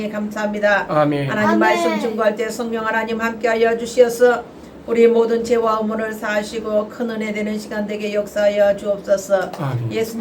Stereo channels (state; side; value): identical; both; correlation 1.00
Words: 감사합니다. 아멘. 하나님 아멘. 말씀 증거할 때 성령 하나님 함께하여 주시어서 우리 모든 죄와 의문을 사하시고 큰 은혜 되는 시간 되게 역사하여 주옵소서. 아멘.